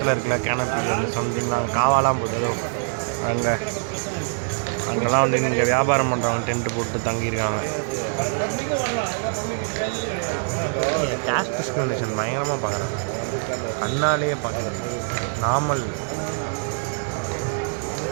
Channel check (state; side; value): silent; left; digital silence